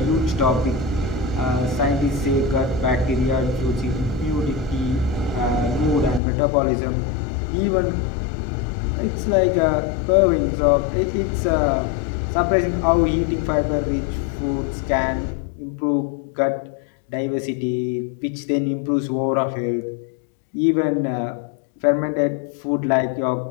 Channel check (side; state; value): right; drops out; at 6.2 s